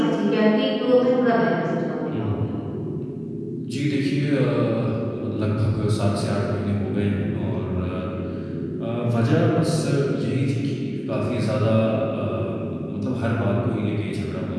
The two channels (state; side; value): identical; both; correlation 1.00